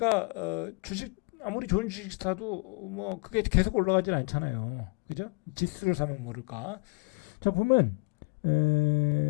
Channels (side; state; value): right; quieter; 32.2 dB